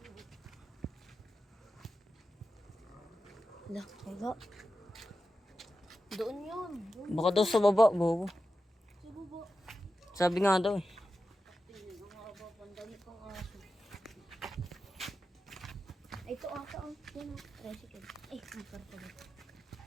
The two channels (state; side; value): normal; both; correlation 0.91